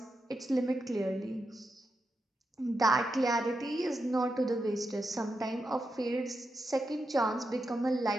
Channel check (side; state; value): both; normal; correlation 0.87